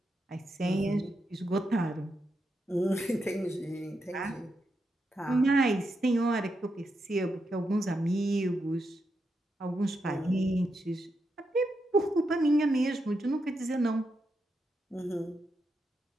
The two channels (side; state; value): both; normal; correlation 0.84